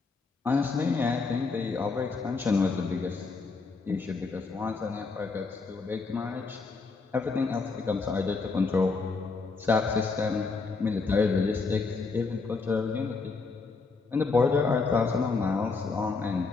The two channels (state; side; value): quieter; right; 4.3 dB